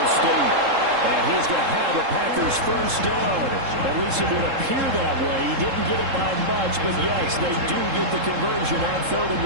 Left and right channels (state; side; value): late; left; 3.7 ms